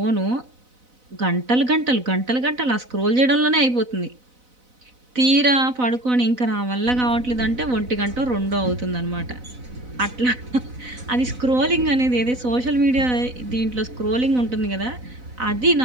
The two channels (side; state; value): left; late; 4.0 ms